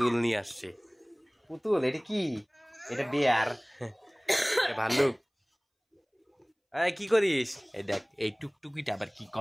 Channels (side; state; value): both; identical; correlation 1.00